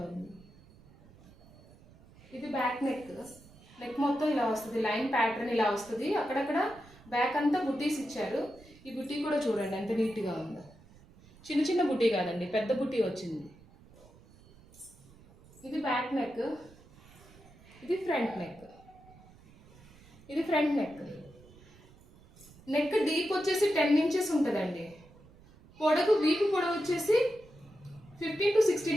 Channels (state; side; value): noise; right; rumble, 24 dB below the sound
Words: ఉంది. ఇది బ్యాక్ నెక్. నెక్ మొత్తం ఇలా వస్తుంది, లైన్ ప్యాటర్న్ ఇలా వస్తుంది. అక్కడక్కడ బ్యాక్ అంతా బుట్టీస్ ఇచ్చారు. ఈ బుట్టీ కూడా చూడండి ఎంత నీట్గా ఉందో. చిన్న చిన్న బుట్టీ కాదండి, పెద్ద బుట్టీ వచ్చింది. ఇది బ్యాక్ నెక్, ఇది ఫ్రంట్ నెక్. ఇది ఫ్రంట్ నెక్. నెక్ డీప్ వచ్చేసి 10 ఇంచెస్ ఉంటుందండి. పొడవు, వీపు పొడవు వచ్చేసి 15 to